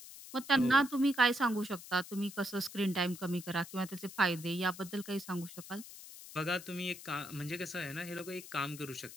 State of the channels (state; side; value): noise; left; hiss, 14 dB below the sound